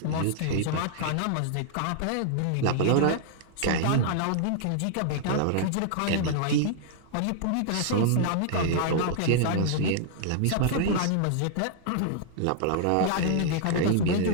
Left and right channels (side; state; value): both; different; correlation -0.01